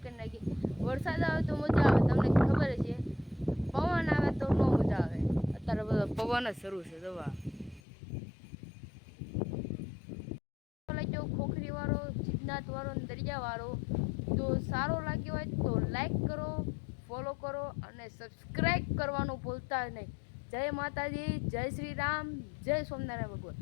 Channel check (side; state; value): right; drops out; at 7.8 s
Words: કરી નાખી. વરસાદ આવે તો મજા આવે, તમને ખબર છે. પવન આવે તો ન મજા આવે. અત્યારે બધો પવન જ શરૂ છે. દવા ખોખરી વાળો, સિદ્ધનાથ વાળો, દરિયા વાળો તો સારો લાગ્યો હોય તો લાઈક કરો, ફોલો કરો અને સબસ્ક્રાઈબ કરવાનું ભૂલતા નહીં. જય માતાજી, જય શ્રી રામ, જય સ્વામિનારાયણ ભગવાન,